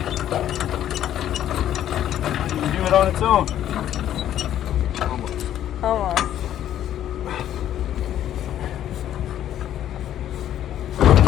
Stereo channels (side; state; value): right; quieter; 11.3 dB